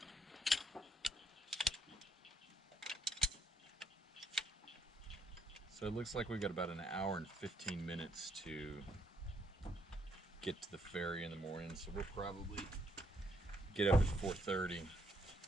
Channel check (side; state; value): both; normal; correlation 0.72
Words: So it looks like we've got about an hour and 15 minutes to get to the ferry in the morning. So we'll probably get up at 4:30